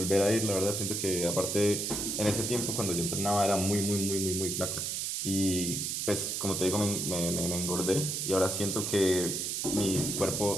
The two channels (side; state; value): right; noise; hiss, 1 dB below the sound